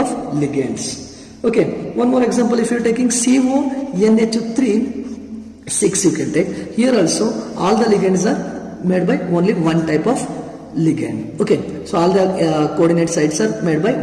ligands. Okay, one more example, if you are taking CONH3 6 you can take. Here also all the ligands are made by only one type of ligand. Okay, so all the coordinate sites are made by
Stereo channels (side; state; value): both; identical; correlation 1.00